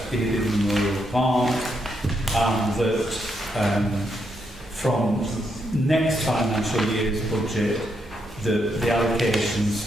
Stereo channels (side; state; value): both; normal; correlation 0.79